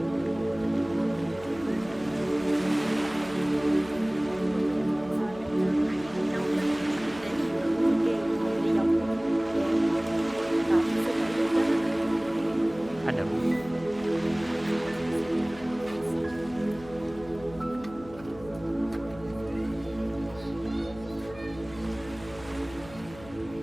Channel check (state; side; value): noise; left; hum, 19 dB below the sound